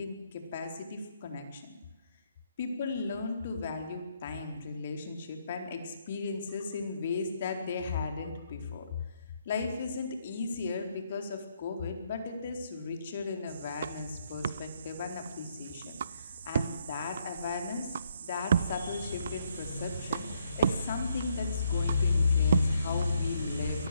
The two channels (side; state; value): both; inverted; correlation -0.73